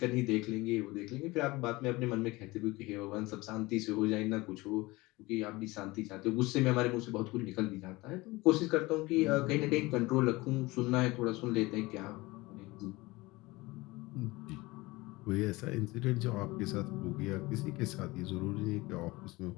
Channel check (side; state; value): right; quieter; 21.6 dB